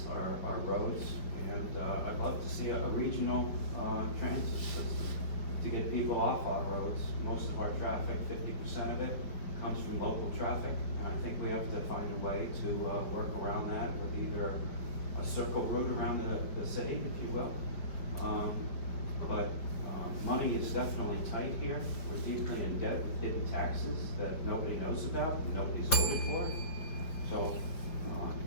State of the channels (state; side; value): late; right; 5.2 ms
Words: our roads, and I'd love to see a regional transit system to get people off our roads. Most of our traffic, 50% of it, comes from local traffic. And I think we have to find a way to work around that with either a circle route around the city, if you will. But money is definitely tight here. We're deeply in debt with hidden taxes that nobody knows about, and nobody's voted for. So